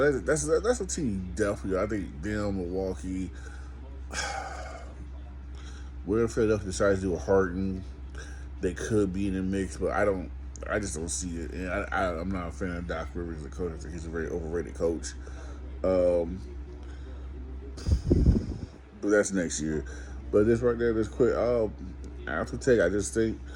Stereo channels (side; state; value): both; identical; correlation 1.00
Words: that's a team definitely. I think them, Milwaukee. Where Philadelphia decides to do a Harden, they could be in the mix, but I just don't see it. And I'm not a fan of Doc Rivers as a coach. I think he's a very overrated coach. But that's next year. But this right there, this quick after take, I just think